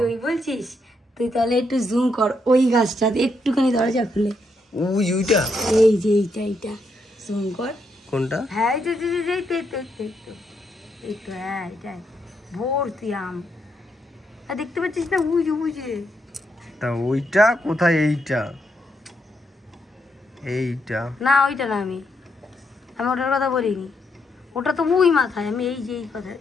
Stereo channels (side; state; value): both; normal; correlation 0.78